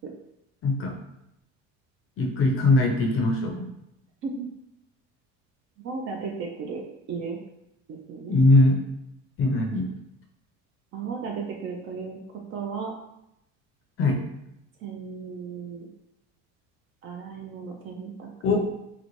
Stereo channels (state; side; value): normal; both; correlation 0.52